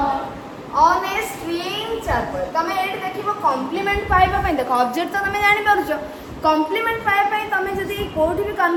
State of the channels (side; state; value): both; identical; correlation 1.00